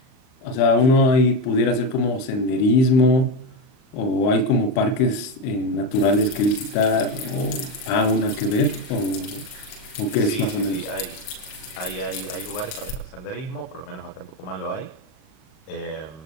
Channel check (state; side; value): late; right; 38 ms